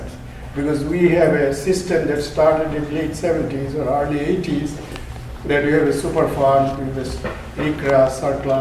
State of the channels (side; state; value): both; identical; correlation 1.00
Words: Because we have a system that started in late 70s or early 80s, that we have a Superfund with this ICRA,